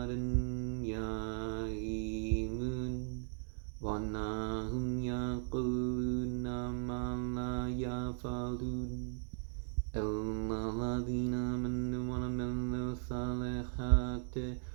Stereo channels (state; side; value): silent; left; 53 dB below the other